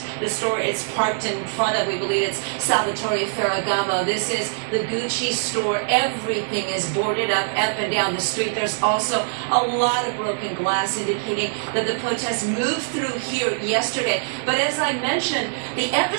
The store is parked in front of, we believe it's Salvatore Ferragamo. This is the Gucci store. Everything is boarded up and down the street. There's also a lot of broken glass indicating that the protest moved through here yesterday. But as I mentioned, the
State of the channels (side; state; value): left; silent; digital silence